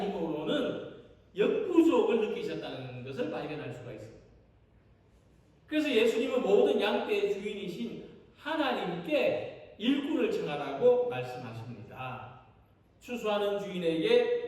힘으로는 역부족을 느끼셨다는 것을 발견할 수가 있습니다. 그래서 예수님은 모든 양떼의 주인이신 하나님께 일꾼을 청하라고 말씀하십니다. 추수하는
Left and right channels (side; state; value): both; identical; correlation 1.00